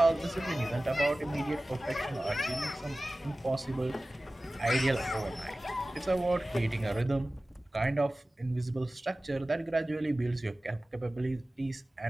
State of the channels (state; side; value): normal; both; correlation 0.97